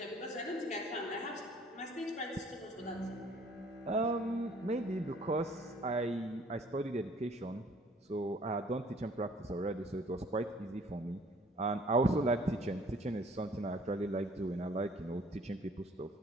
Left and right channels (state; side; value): normal; both; correlation 0.56